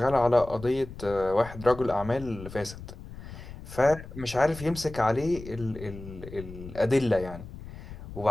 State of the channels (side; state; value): left; noise; rumble, 13 dB below the sound